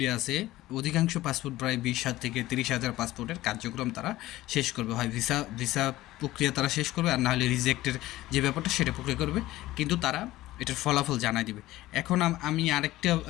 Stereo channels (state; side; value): quieter; right; 16.6 dB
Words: আছে, অধিকাংশ পাসপোর্ট প্রায় 20,000 থেকে 30,000 পাসপোর্টের কার্যক্রম তারা শেষ করবে। হয় ভিসা ভিসা প্রক্রিয়া তারা শেষ করবে, আর নাহলে রিজেক্টের যে ব্যাপারটা সেটা প্রক্রিয়া করবে, কিন্তু তারা এটার ফলাফল জানাই দিবে। এখন আমি আরেকটা